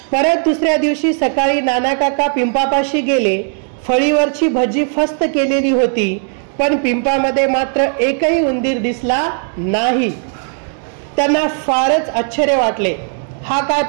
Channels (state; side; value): silent; left; 55 dB below the other